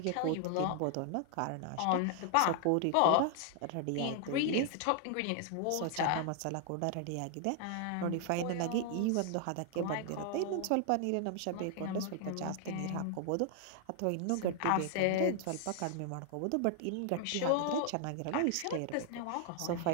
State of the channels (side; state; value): both; different; correlation 0.00